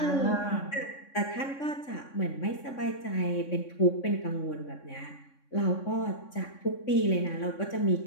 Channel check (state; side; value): late; right; 3.6 ms